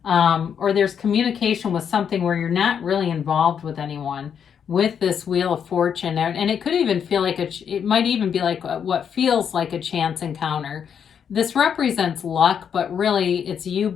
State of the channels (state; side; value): quieter; right; 7.7 dB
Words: or there's communication with something where you're not really involved with anyone with this Wheel of Fortune. And it could even feel like it might even be like what feels like a chance encounter. This represents luck, but really it's you